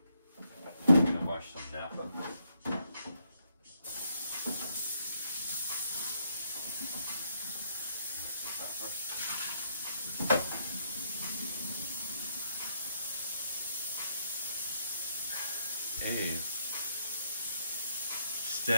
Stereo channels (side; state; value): both; inverted; correlation -0.75